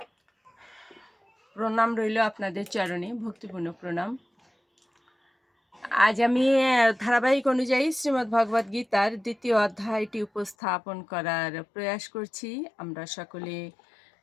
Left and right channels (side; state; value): right; drops out; at 10.6 s